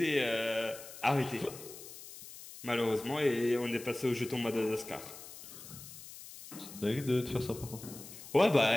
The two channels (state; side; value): noise; left; hiss, 15 dB below the sound